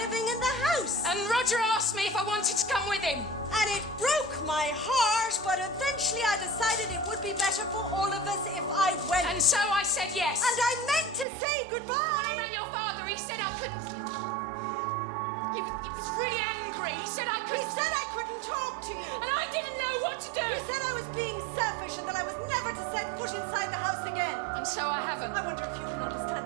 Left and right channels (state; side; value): drops out; left; at 11.2 s